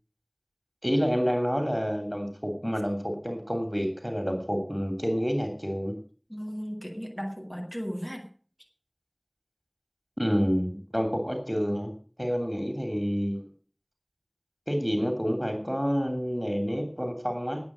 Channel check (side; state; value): both; identical; correlation 1.00